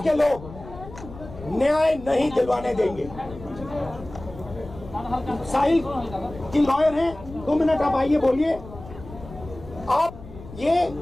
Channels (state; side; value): noise; left; rumble, 15 dB below the sound